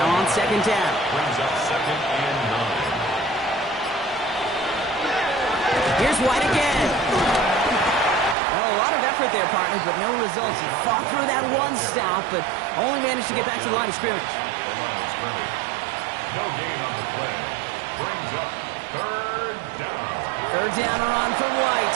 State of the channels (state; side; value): drops out; left; at 8.3 s